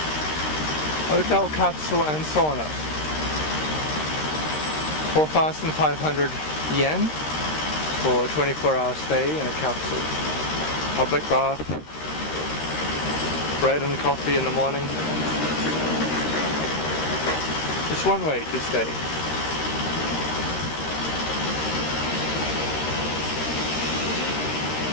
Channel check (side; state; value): right; late; 13 ms